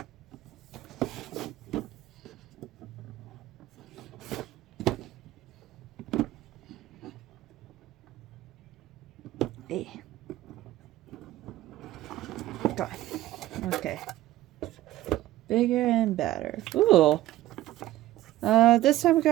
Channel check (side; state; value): left; quieter; 15.2 dB